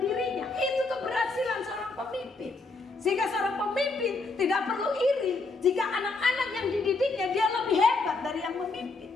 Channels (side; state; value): right; quieter; 3.7 dB